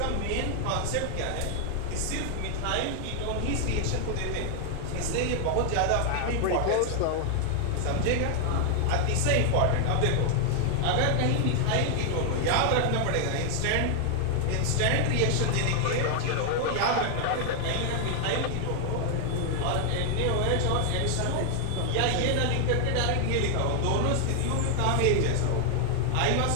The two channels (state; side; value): different; both; correlation 0.00